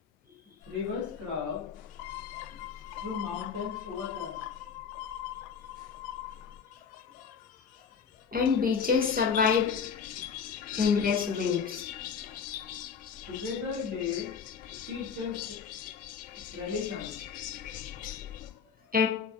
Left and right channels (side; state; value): right; quieter; 6.4 dB